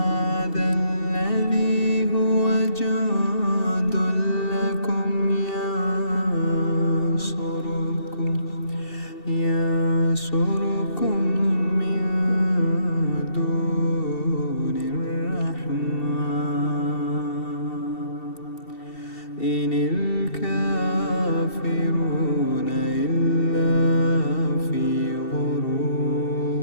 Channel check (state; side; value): late; right; 2.7 ms